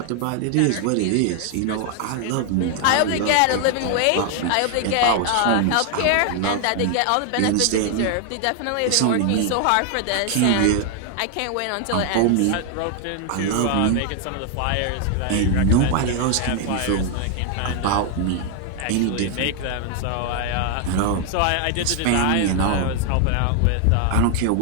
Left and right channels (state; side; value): different; both; correlation 0.00